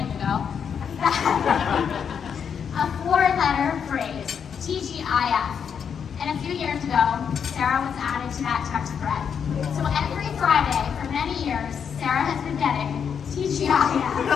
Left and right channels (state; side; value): quieter; right; 7.3 dB